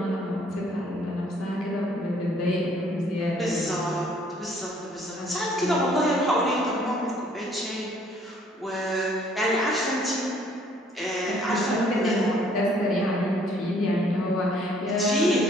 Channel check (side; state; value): both; normal; correlation 0.61